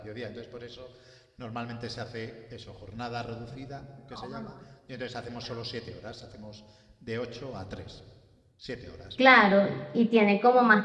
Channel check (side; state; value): both; identical; correlation 1.00